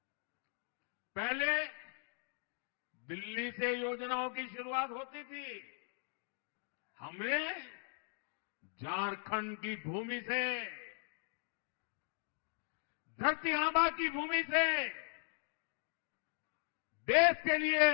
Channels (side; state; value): right; silent; 52 dB below the other